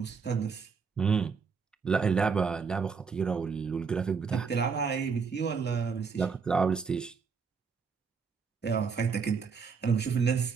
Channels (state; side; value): quieter; left; 5.6 dB